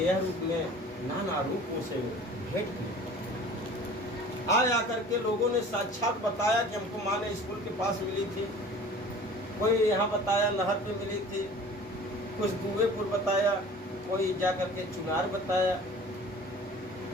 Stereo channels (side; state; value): both; normal; correlation 0.44